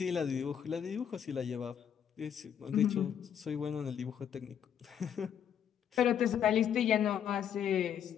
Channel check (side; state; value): right; quieter; 8.8 dB